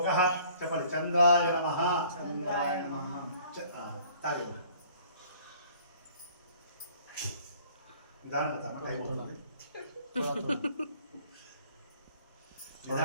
చెప్పండి చంద్రాయ నమః చంద్రాయ నమః తాగే నిదానంగా తాగండి టైం అవుతుంది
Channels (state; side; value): inverted; both; correlation -0.55